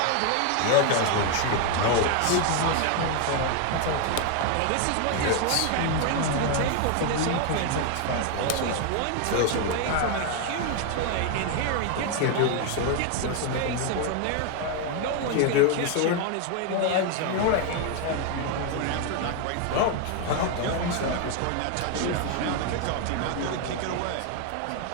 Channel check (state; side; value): different; both; correlation 0.00